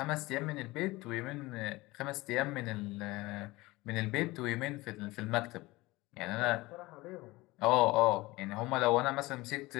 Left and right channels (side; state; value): right; quieter; 20.7 dB